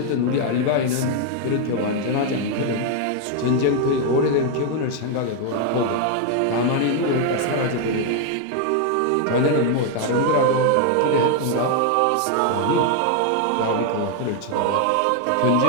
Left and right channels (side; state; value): both; different; correlation 0.01